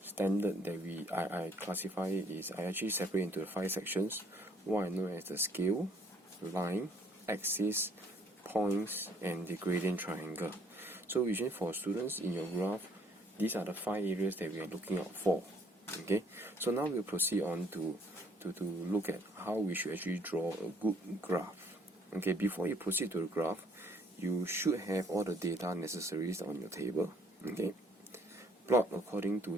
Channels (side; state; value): both; normal; correlation 0.64